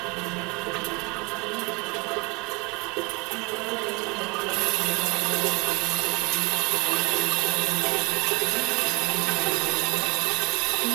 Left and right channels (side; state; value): left; quieter; 27.7 dB